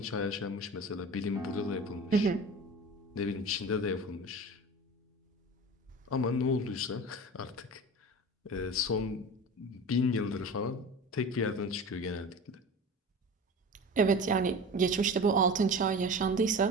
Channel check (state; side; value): normal; both; correlation 0.34